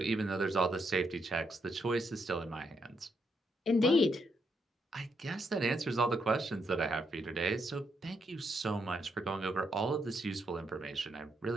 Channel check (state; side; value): normal; both; correlation 0.78